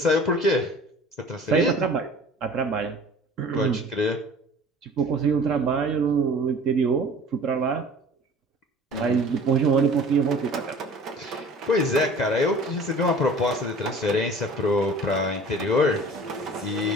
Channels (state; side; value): normal; both; correlation 0.45